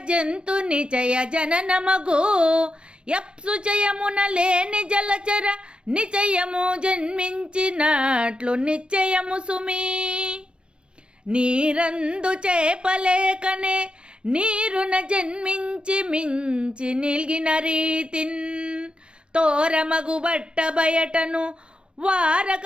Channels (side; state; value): left; late; 0.057 ms